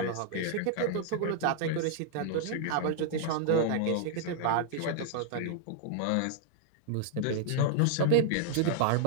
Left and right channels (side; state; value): both; different; correlation -0.01